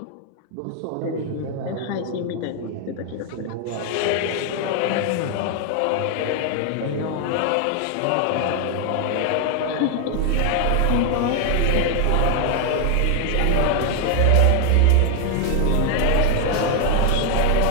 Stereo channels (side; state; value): both; different; correlation 0.00